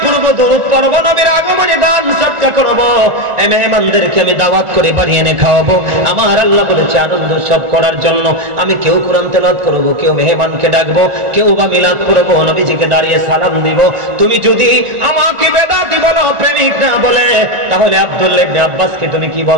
পড়ব, দরুদ পড়ব, নবীর আগমনে দান সদকা করব, এই মেহমানদেরকে আমি দাওয়াত করে বাড়ি এনে খাওয়াবো। আমার আল্লাহ বলেছে আনন্দ সব করার জন্য আমি কেউ কোরআন তেলাওয়াত করব, কেউ মেহমানকে ডাকবো, কেউ বা মিলাদ পড়ব, নবীজিকে দাঁড়িয়ে সালাম দিব। তুমি যদি আমাকে বেদাতি বলো, প্রেমিক না বলে, তাহলে আব্দুল্লাহ ইবনে আব্বাসকে তুমি কি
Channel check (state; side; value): late; left; 1.5 ms